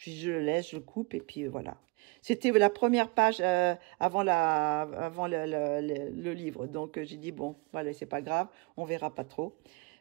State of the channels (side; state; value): left; quieter; 28.4 dB